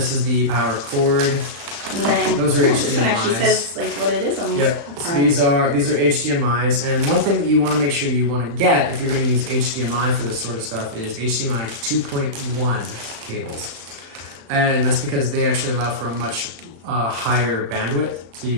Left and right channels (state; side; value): late; left; 35 ms